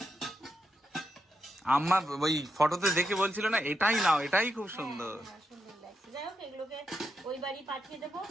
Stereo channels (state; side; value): normal; both; correlation 0.84